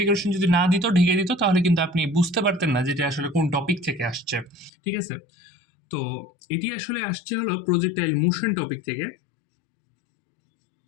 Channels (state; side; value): drops out; right; at 4.7 s